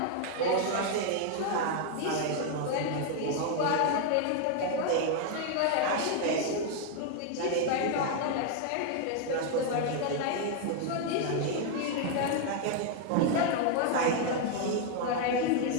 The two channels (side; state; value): both; different; correlation 0.00